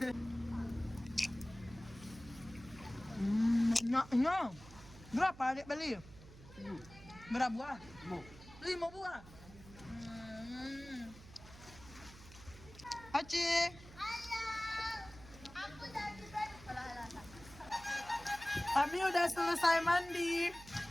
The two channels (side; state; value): right; noise; hum, 18 dB below the sound